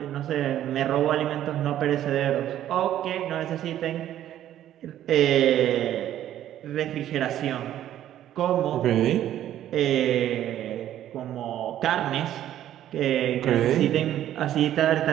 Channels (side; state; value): left; quieter; 11.9 dB